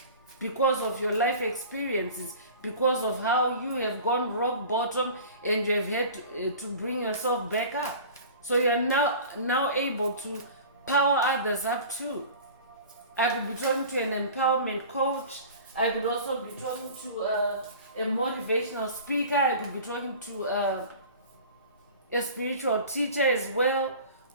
because of your life experiences, because of how you have gone rock bottom and you have had to bring yourself back up. So you are now able to power others up too. I could be talking to an empowerment coach. I could also be talking to a motivational speaker. I could be talking to a spiritual teacher as well.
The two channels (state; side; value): inverted; both; correlation -0.40